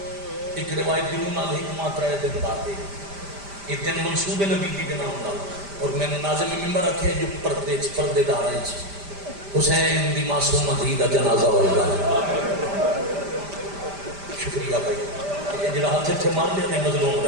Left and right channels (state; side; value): late; left; 5.0 ms